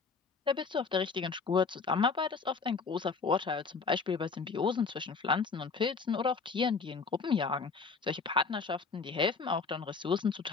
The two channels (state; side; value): quieter; right; 4.8 dB